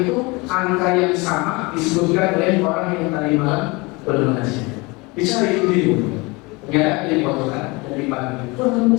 itu angka yang sama disebutkan oleh orang yang tadi malam bernasihat. Bicara itu dulu. Ternyata dia dipotongkan dan dipanggil.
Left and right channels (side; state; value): right; quieter; 25.5 dB